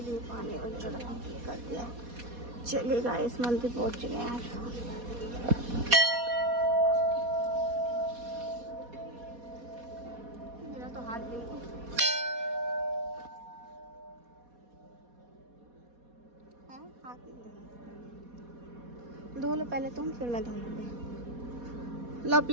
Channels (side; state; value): left; late; 4.2 ms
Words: लिए, पानी वगैरह कर दिया। चलिए गाइस मंदिर पहुंच चुके हैं। मेरा तो हाथ धो लो पहले तुम, फिर मैं धो लूँगी। लो